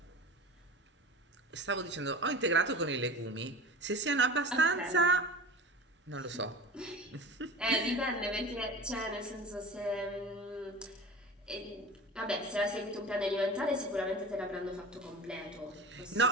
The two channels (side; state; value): both; normal; correlation 0.35